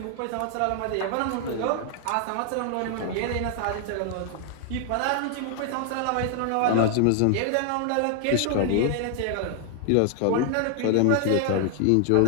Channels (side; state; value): both; different; correlation 0.00